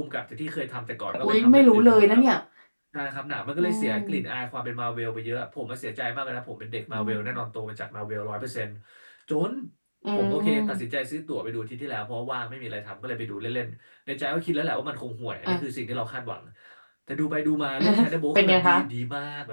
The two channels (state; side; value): inverted; both; correlation -1.00